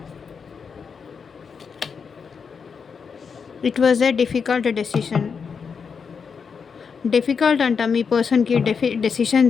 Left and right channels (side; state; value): right; quieter; 6.0 dB